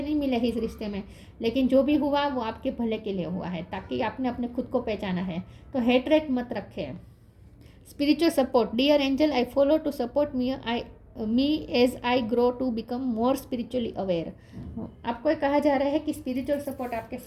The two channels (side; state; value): both; identical; correlation 1.00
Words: नहीं मिले हैं इस रिश्ते में, लेकिन जो भी हुआ वो आपके भले के लिए हुआ है, ताकि आपने अपने खुद को पहचाना है। तो हेटरेट मत रखें। Spiritual support. Dear angel, I follow to support me as I grow to become more spiritually aware. आपको कहा जा रहा है कि स्पिरिचुअल सपोर्ट आपके